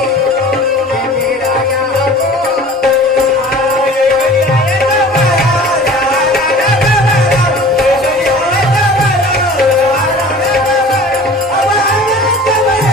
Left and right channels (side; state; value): both; normal; correlation 0.43